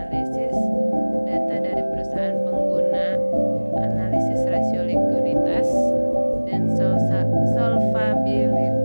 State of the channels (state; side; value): inverted; both; correlation -1.00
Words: data dari perusahaan pengguna, analisis rasio likuiditas dan